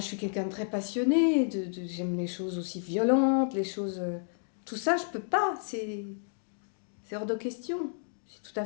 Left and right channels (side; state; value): right; silent; digital silence